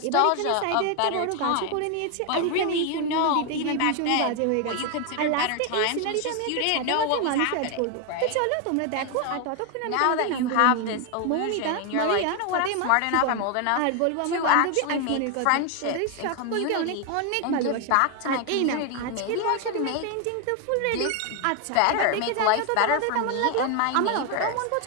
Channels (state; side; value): different; both; correlation 0.01